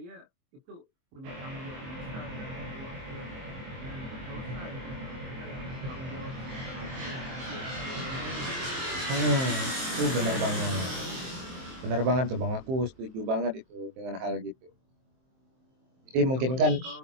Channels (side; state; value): left; late; 23 ms